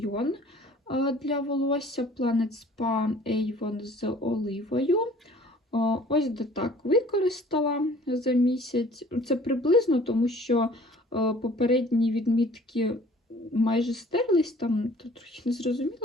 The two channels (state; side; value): normal; both; correlation 0.51